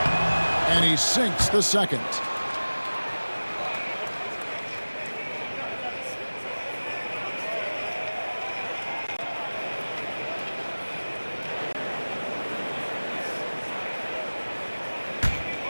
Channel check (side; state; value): both; inverted; correlation -1.00